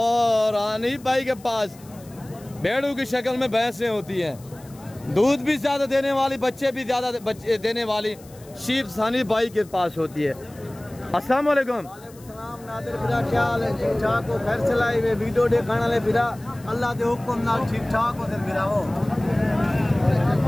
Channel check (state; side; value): noise; left; hiss, 24 dB below the sound